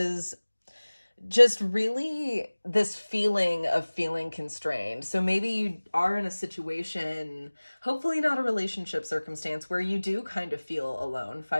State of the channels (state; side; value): inverted; both; correlation -1.00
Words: just really this feeling of feeling constrained. So maybe you are in a situation, hopefully not a relationship circumstance, where you do kind of feel alone.